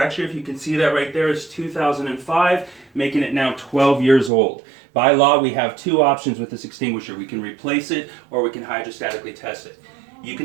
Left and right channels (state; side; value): drops out; left; at 4.3 s